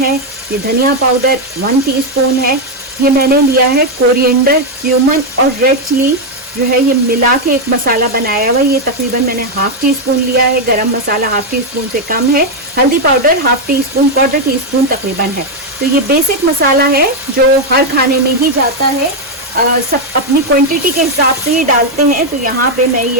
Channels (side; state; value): both; normal; correlation 0.02